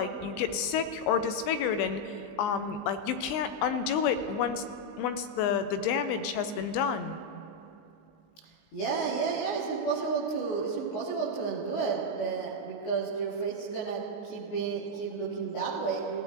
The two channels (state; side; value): late; right; 19 ms